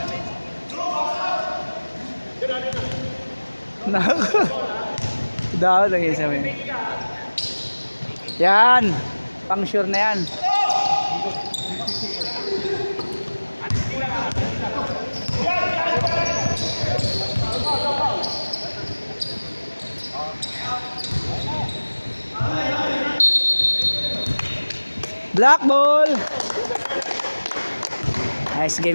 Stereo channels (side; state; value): both; inverted; correlation -1.00